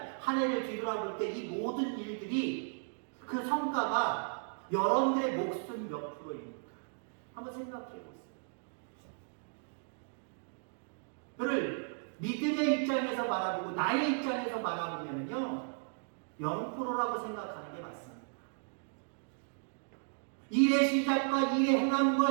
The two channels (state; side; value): silent; left; digital silence